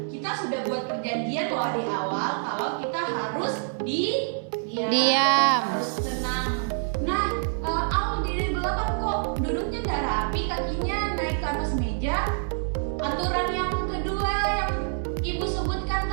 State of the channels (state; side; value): silent; left; digital silence